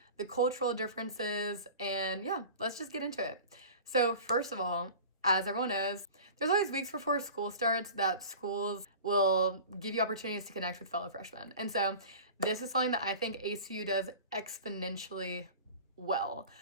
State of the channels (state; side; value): inverted; both; correlation -0.38